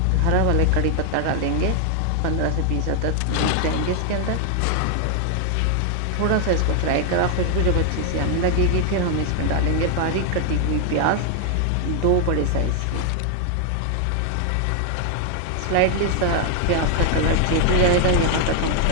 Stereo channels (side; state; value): both; different; correlation 0.00